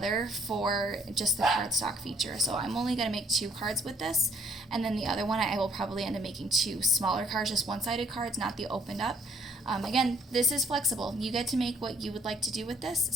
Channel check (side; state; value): both; normal; correlation 0.63